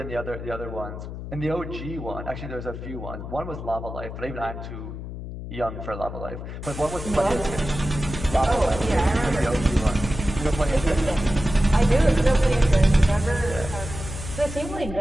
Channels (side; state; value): left; noise; hum, 9 dB below the sound